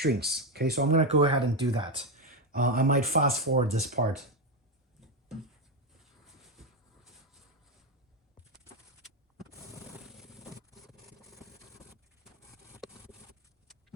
Okay, so I'm gonna go ahead and do that. I might fast forward this part.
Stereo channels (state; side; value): normal; both; correlation 0.08